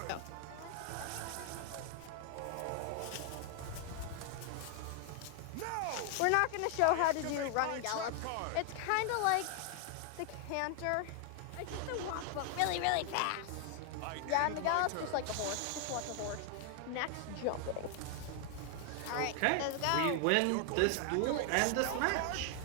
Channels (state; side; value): different; both; correlation 0.00